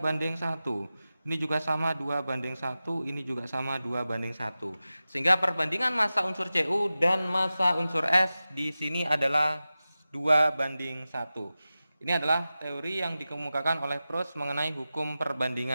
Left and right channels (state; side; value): inverted; both; correlation -0.95